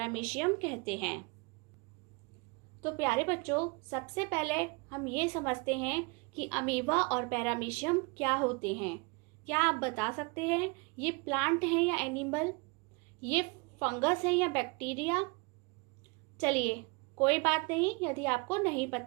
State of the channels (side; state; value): left; quieter; 30.0 dB